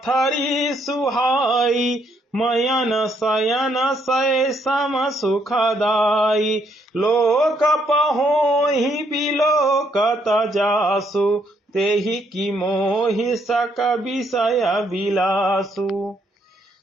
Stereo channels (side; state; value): both; normal; correlation 0.71